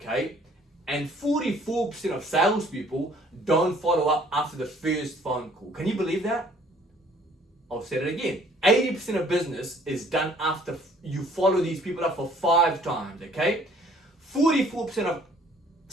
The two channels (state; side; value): normal; both; correlation 0.58